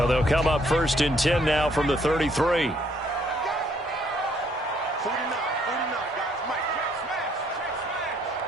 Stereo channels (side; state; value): both; normal; correlation 0.66